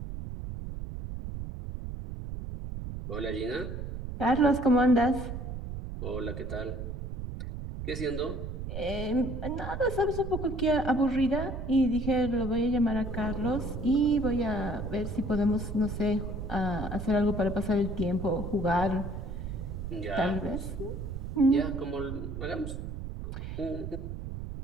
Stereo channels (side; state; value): right; noise; rumble, 6 dB below the sound